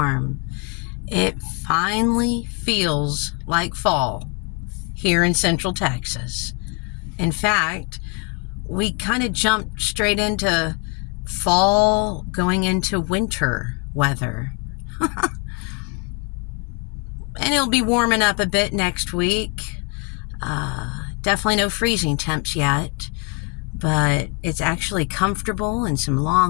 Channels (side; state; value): right; quieter; 32.7 dB